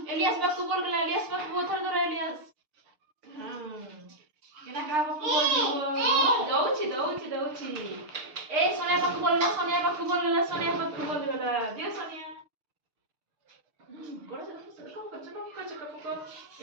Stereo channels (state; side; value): late; left; 6.7 ms